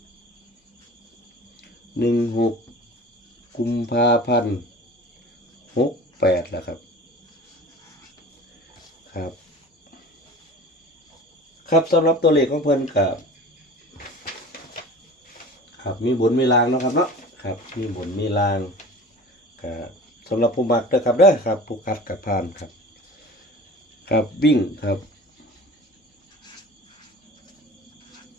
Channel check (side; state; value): both; normal; correlation 0.39